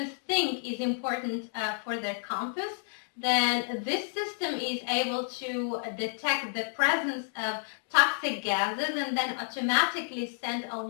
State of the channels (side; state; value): right; silent; 58 dB below the other